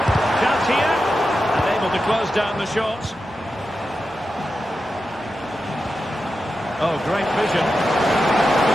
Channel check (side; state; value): both; normal; correlation 0.90